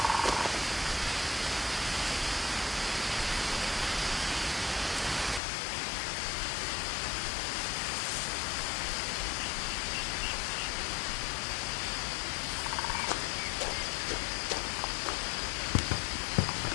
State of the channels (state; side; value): drops out; right; at 5.4 s